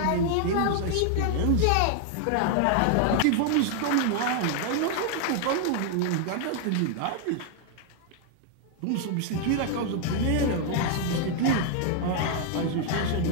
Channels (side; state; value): both; different; correlation 0.00